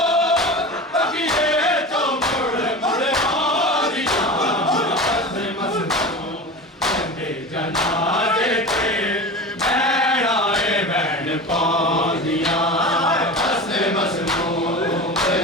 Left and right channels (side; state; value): both; normal; correlation 0.30